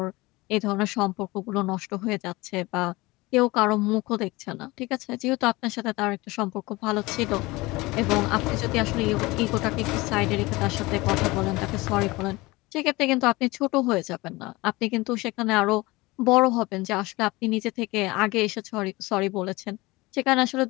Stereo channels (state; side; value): quieter; right; 21.9 dB